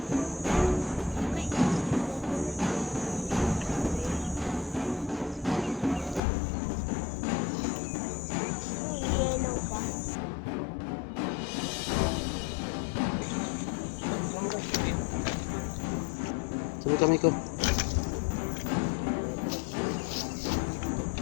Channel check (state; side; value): drops out; right; at 6.2 s